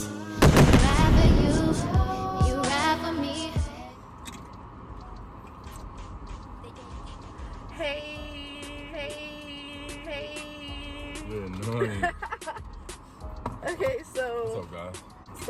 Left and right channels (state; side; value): identical; both; correlation 1.00